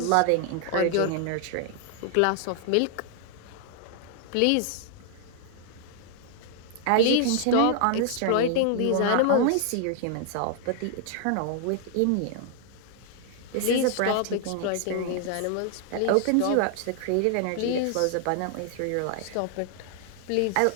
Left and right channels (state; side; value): different; both; correlation 0.00